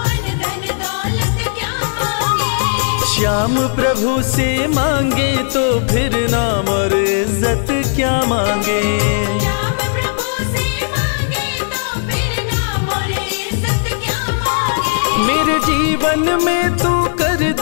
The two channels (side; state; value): right; silent; digital silence